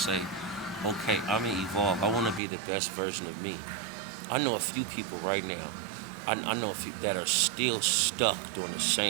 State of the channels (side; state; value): left; drops out; at 2.4 s